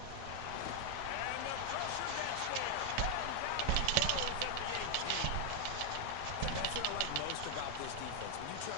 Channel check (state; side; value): different; both; correlation 0.00